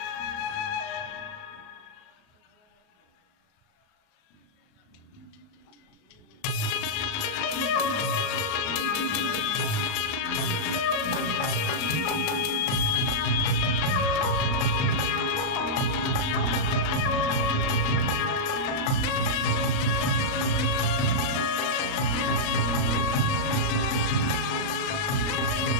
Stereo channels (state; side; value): late; right; 38 ms